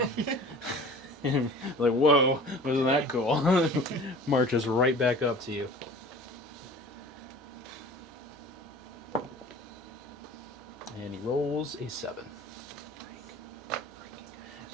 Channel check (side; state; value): both; normal; correlation 0.43